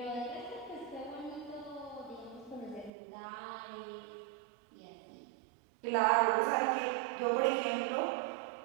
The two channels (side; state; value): left; drops out; at 2.9 s